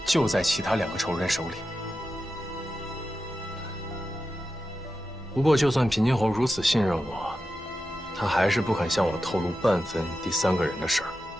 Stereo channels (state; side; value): normal; both; correlation 0.91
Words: 就在其他2个仇人手里。不过，就算平津侯如此信任我，他还是不肯向我透露半分第3个人的事儿。